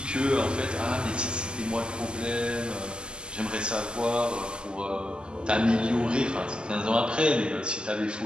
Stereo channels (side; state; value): left; late; 0.048 ms